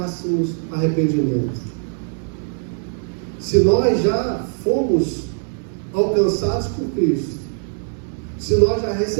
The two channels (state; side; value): silent; left; digital silence